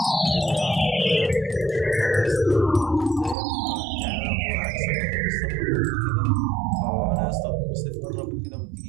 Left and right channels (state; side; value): drops out; left; at 3.4 s